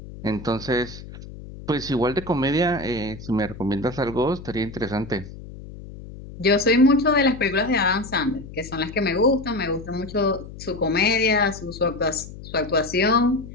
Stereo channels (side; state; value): left; noise; hum, 14 dB below the sound